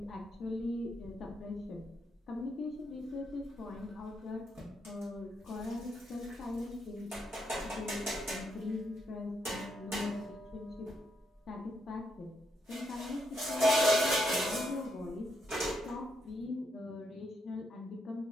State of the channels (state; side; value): normal; both; correlation 0.78